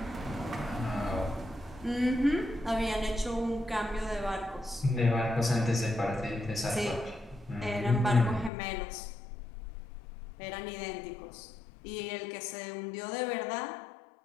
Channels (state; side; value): drops out; right; at 8.5 s